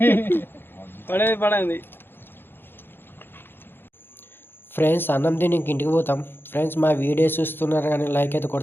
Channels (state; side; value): late; right; 0.10 ms